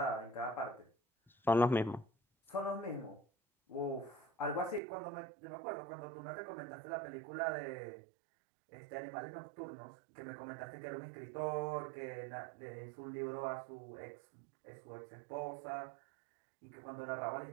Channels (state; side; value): drops out; left; at 4.8 s